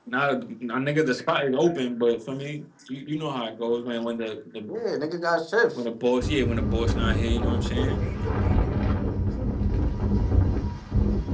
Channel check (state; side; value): identical; both; correlation 1.00